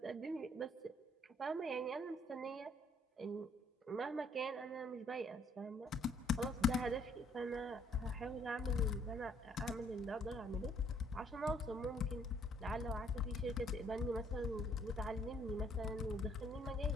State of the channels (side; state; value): both; normal; correlation 0.65